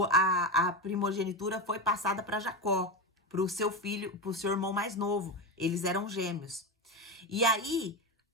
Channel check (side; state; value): both; normal; correlation 0.16